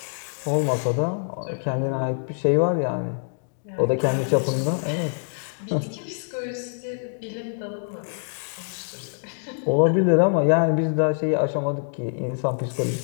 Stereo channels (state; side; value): silent; right; digital silence